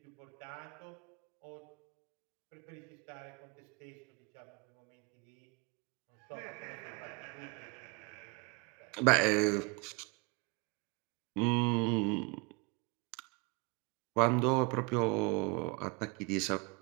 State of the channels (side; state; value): left; quieter; 30.4 dB